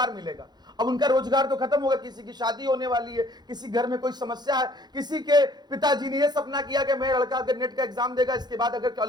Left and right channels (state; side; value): late; left; 0.20 ms